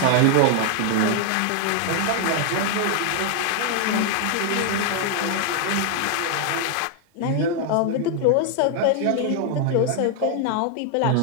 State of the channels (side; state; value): both; different; correlation 0.00